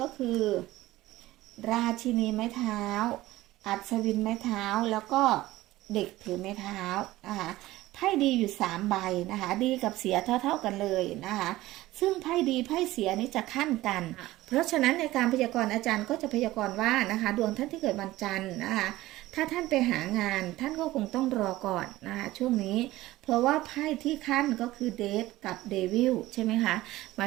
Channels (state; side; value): quieter; left; 17.1 dB